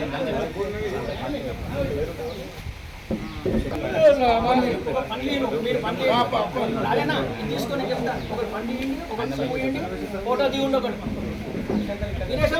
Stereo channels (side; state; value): both; identical; correlation 1.00